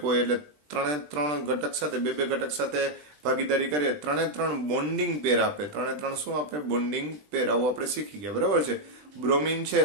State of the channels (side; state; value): left; late; 20 ms